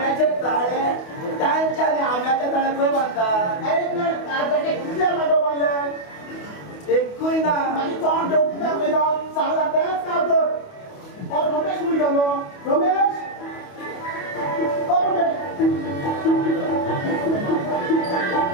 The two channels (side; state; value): right; late; 28 ms